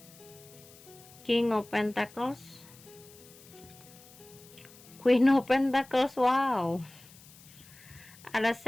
King of Pentacles, Queen of Pentacles, wow. Ada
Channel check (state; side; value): noise; left; hiss, 22 dB below the sound